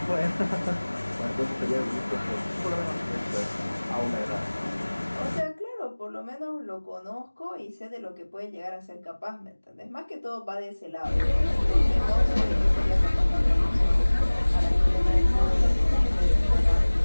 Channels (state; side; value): inverted; both; correlation -1.00